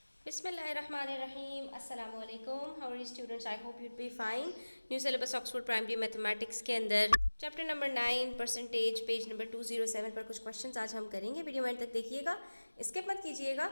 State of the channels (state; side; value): inverted; both; correlation -1.00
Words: बिस्मिल्लाहिर्रहमानिर्रहीम अस्सलाम वालेकुम। How are you students? I hope you'd be fine. New syllabus Oxford primary mathematics के अंदर chapter number 9 percentage page number 207 पर कुछ क्वेश्चंस आज हम करेंगे। वीडियो एंड तक देखिएगा, स्किप मत कीजिएगा।